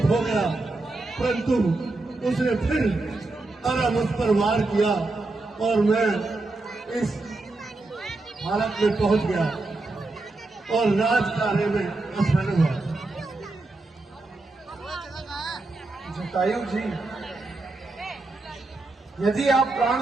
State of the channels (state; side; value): quieter; left; 3.2 dB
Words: हो गया, परंतु उसने फिर आरा मुझ पर वार किया और मैं इस हालत में पहुंच गया और राज कार्य में असफल हुआ। जटायु जी, यदि आप प्राण